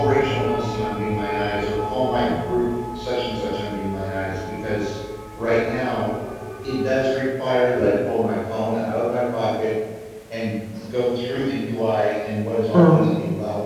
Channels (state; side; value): identical; both; correlation 1.00